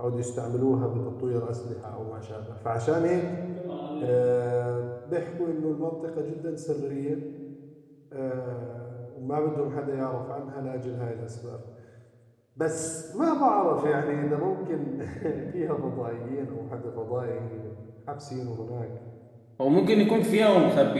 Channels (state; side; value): identical; both; correlation 1.00